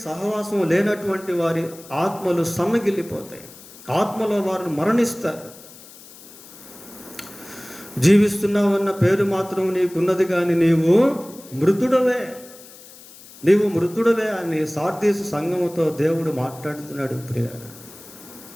సహవాసం లేనటువంటి వారి ఆత్మలు సన్నగిల్లిపోతాయి. ఆత్మలో వారిని మరణిస్తారు. జీవిస్తున్నావన్న పేరు మాత్రం నీకున్నది, కానీ నీవు మృతుడవే అని సార్దీసు సంఘముతో దేవుడు మాట్లాడుతున్నాడు ప్రియులారా.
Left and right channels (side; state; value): left; noise; hiss, 20 dB below the sound